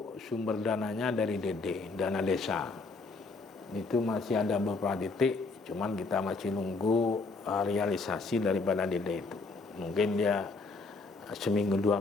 sumber dananya dari DD, dana desa. Itu masih ada beberapa titik, cuman kita masih nunggu realisasi daripada DD itu. Mungkin dia seminggu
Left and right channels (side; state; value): right; quieter; 3.8 dB